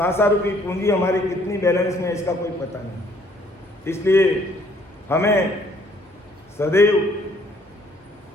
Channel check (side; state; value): both; normal; correlation 0.63